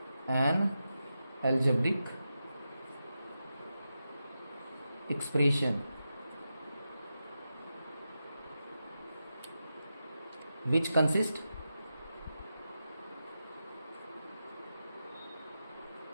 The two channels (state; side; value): inverted; both; correlation -0.90